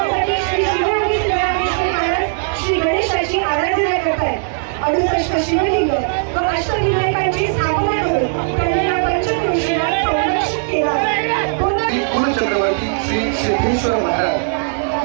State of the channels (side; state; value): left; silent; digital silence